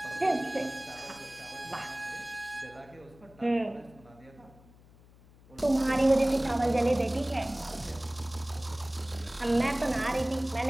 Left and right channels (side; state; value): left; noise; hum, 25 dB below the sound